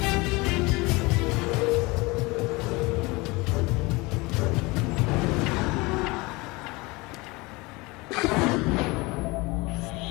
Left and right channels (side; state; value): right; quieter; 24.1 dB